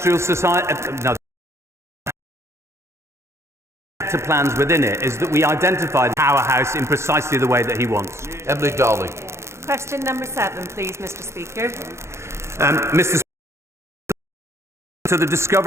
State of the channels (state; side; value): late; left; 0.13 ms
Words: society, plans within it is that we identify the powerhouse in precisely the way that he wants. Emily Darling. Question number 7, please, Mr. Speaker. Mr. Speaker, to the